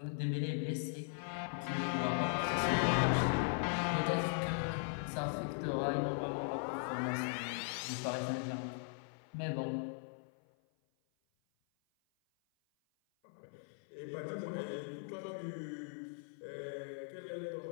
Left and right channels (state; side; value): silent; right; 52 dB below the other